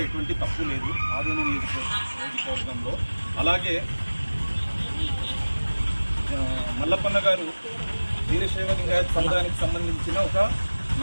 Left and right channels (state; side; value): inverted; both; correlation -1.00